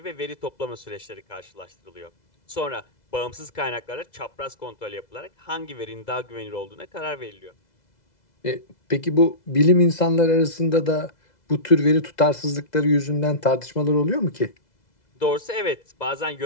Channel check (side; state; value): right; late; 2.0 ms